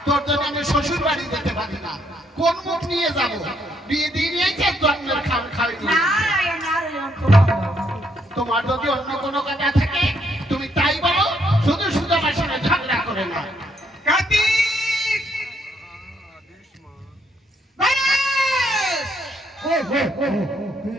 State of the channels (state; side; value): normal; both; correlation 0.72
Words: তোর জন্য আমি শ্বশুর বাড়ি যেতে পারি না, কোন মুখ নিয়ে যাবো? বিয়ে দিয়ে নিয়েছে জন্মের খাওয়া খাওয়াই নিয়ে। নারায়ণ নারায়ণ, খুব ভালো। তোমার যদি অন্য কোনো কথা থাকে তুমি তাই বলো, শুধু শুধু আমার সঙ্গে ঝগড়া করে না। কার্তিক!